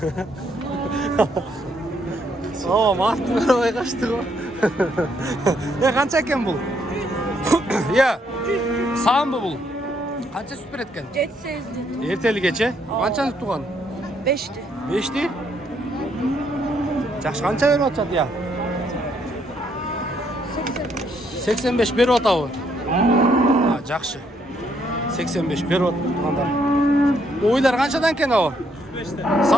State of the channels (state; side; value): normal; both; correlation 0.72